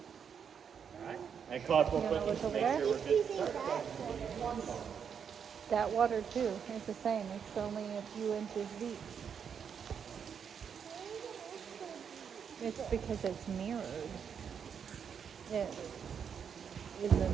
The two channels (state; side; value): quieter; left; 7.3 dB